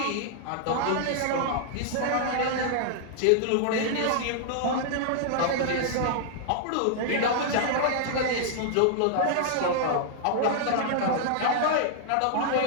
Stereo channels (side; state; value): both; different; correlation -0.01